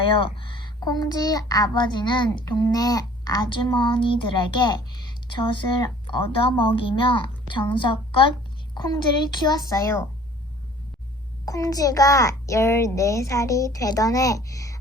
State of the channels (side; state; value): both; normal; correlation 0.52